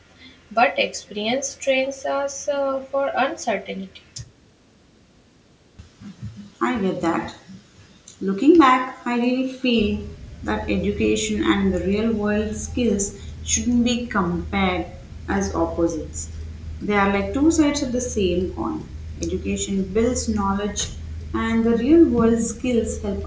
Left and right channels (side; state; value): both; identical; correlation 1.00